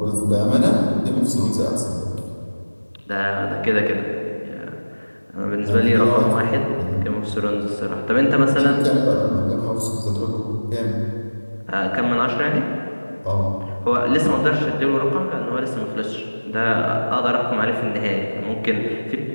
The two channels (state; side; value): inverted; both; correlation -1.00